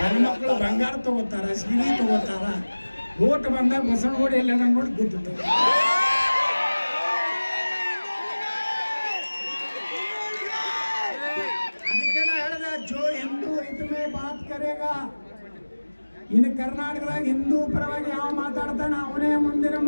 ಬಂಗಾರ ತಗೋತಾರ, ಸೀರೆ ತಗೋತಾರ. ಓಟ್ ಬಂದಾಗ ಬಸವನಗುಡಿ ಎಲ್ಲ ನೋಡಿ ಗೊತ್ತಿತ್ತು. ಅದಕ್ಕೆ ನಾ ಹೇಳಿದೆ, ಜೋ ಹಿಂದೂ ಇದ್ಮೇ ಬಾತ್ ಕರೇಗಾ. ಇನ್ನು ಕರ್ನಾಟಕದಾಗ ಹಿಂದೂ ಪರವಾಗಿ ಯಾವ ಮಾತಾಡ್ತಾನೆ ಅವನೇ ಮುಂದಿನ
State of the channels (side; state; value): both; inverted; correlation -1.00